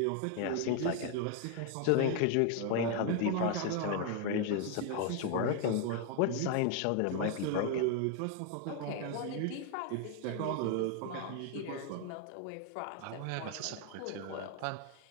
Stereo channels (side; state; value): both; different; correlation 0.00